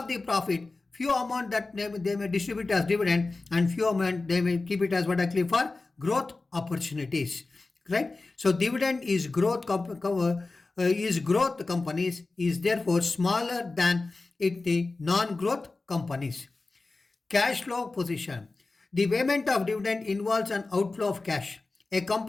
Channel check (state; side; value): quieter; right; 3.5 dB